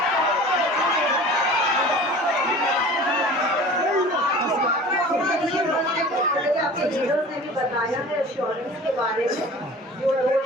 आपके लीडर्स ने भी बताया है एश्योरेंस के बारे में। जो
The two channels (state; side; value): normal; both; correlation 0.41